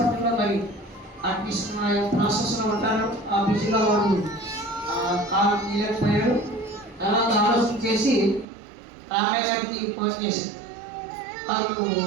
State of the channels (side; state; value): left; drops out; at 8.5 s